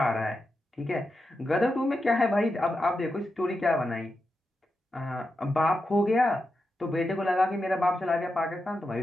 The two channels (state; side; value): normal; both; correlation 0.88